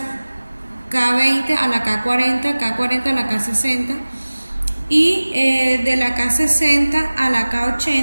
K20 a la K40, K40 a la K60. Y de la K60 a la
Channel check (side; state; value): both; inverted; correlation -1.00